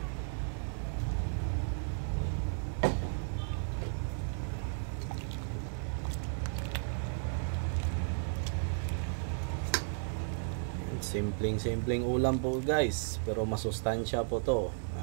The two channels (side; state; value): left; silent; digital silence